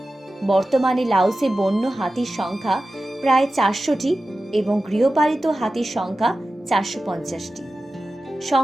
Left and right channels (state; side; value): normal; both; correlation 0.94